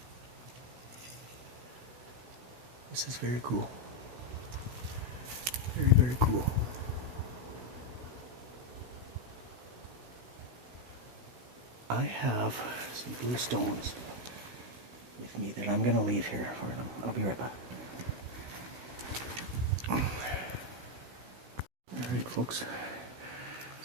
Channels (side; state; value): left; late; 16 ms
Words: This is very cool. Very, very cool. I have some blue stones with me that I'm going to leave here for them. I'll be right back. Alright folks, so